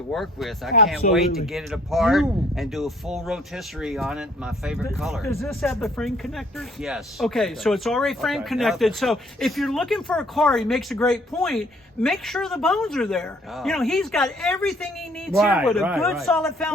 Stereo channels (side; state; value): both; normal; correlation 0.60